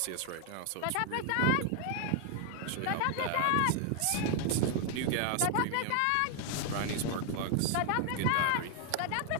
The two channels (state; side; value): different; both; correlation 0.00